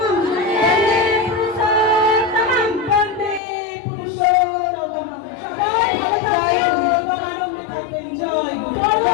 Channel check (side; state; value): right; drops out; at 3.4 s